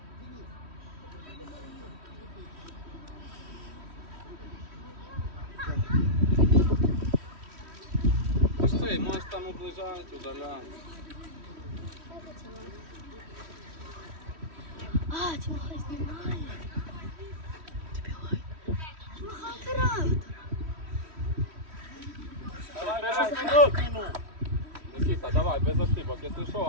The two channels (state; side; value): late; left; 3.1 ms